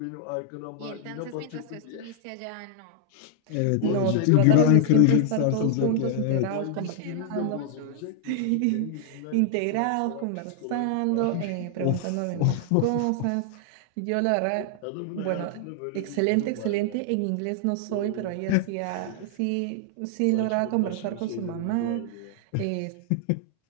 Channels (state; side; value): different; both; correlation 0.00